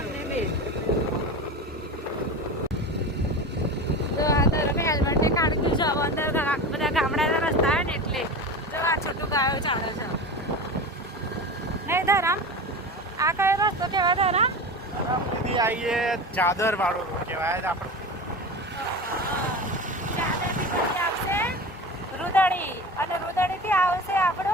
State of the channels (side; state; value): both; normal; correlation 0.28